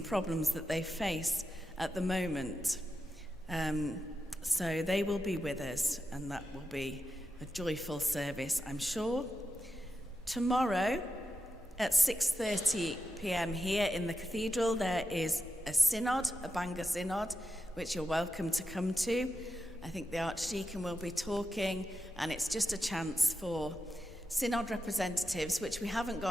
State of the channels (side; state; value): both; normal; correlation 0.89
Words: problems that they face at the moment. So they will be with us, and that will be a joyful service, I'm sure. Tomorrow at 6:30 p.m. here in the cathedral, there is a synod, a Bangor synod, which you're welcome to come to. I think the Archdeacon will be talking, and it's just a chance for synod representatives, which we haven't